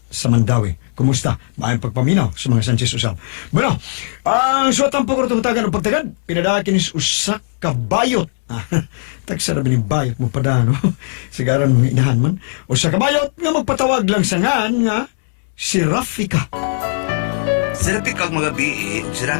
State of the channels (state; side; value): silent; right; 66 dB below the other